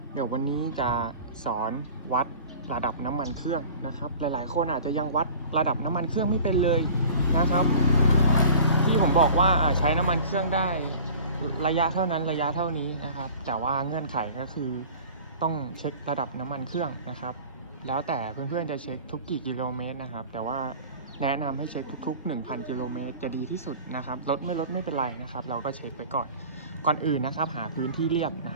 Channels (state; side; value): inverted; both; correlation -0.43